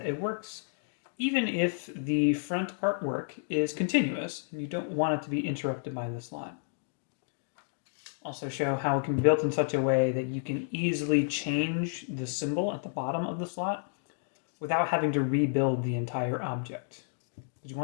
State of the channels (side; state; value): right; silent; digital silence